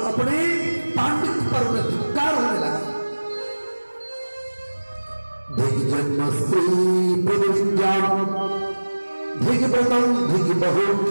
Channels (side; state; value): both; inverted; correlation -1.00